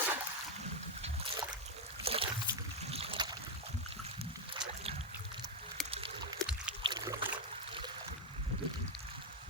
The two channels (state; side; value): normal; both; correlation 0.04